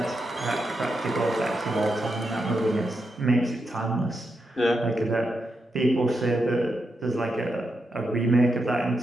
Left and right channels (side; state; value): both; normal; correlation 0.85